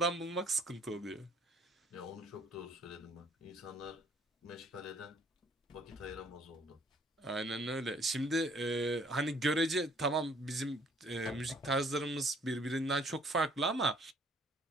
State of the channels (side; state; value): both; normal; correlation 0.60